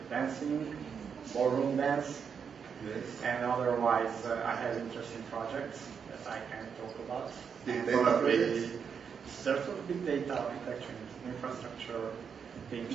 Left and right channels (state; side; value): quieter; left; 6.7 dB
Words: dancing, ballroom dance, Yes. and otherwise I have interesting projects that I can talk about. Big And data probably projects? sort of big data architecture, infrastructure